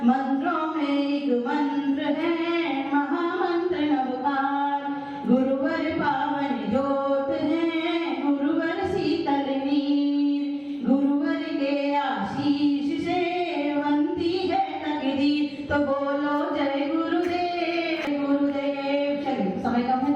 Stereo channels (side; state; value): both; identical; correlation 1.00